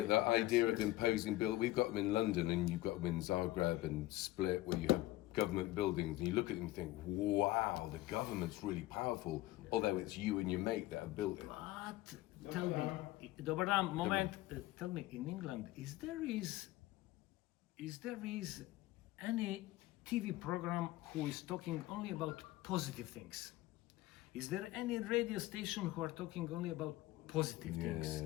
The idea of imposing we've got them in London and you've got them in Zagreb and Split where you have government buildings and you look at them and think, wow, the government's really powerful, although it's you and your mate that have built it. But tell me, dobar dan, moment, tell me, in England, is there any TV program who is talking only about positive things? Is there any radio station who are talking only about positive things?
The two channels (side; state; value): right; quieter; 17.3 dB